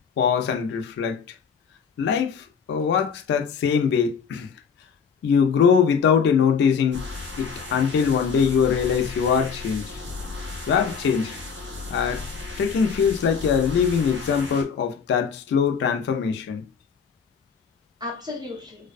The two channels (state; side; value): quieter; right; 6.4 dB